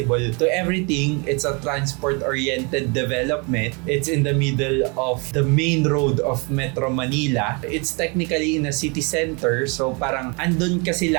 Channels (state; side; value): quieter; left; 31.8 dB